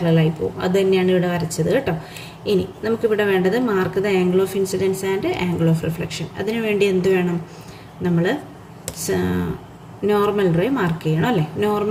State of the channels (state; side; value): identical; both; correlation 1.00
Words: പോവും. അത് തന്നെയാണ് ഇവിടെ വരച്ചത് കേട്ടോ. ഇനി നമുക്കിവിടെ വേണ്ടത് mark the angle of incidence and angle of reflection. അതിനു വേണ്ടി എന്ത് വേണം? നമ്മൾ നോർമൽ റേ മാർക്ക് ചെയ്യണം അല്ലേ.